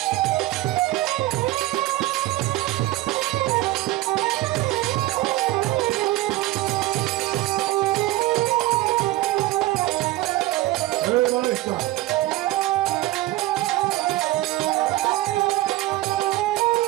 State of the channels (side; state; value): left; quieter; 17.7 dB